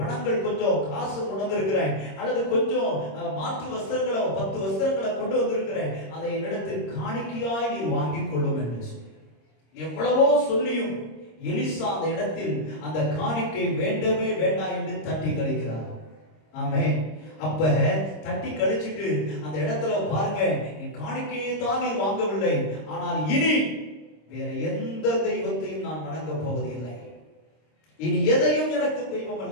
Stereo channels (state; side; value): late; right; 26 ms